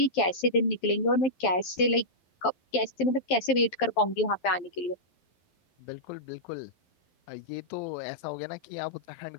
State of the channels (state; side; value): late; right; 11 ms